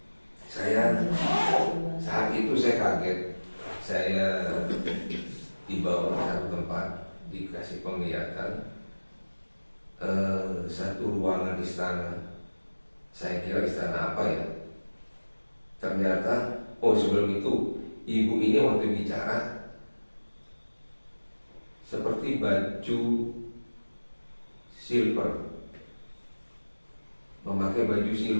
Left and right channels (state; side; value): inverted; both; correlation -1.00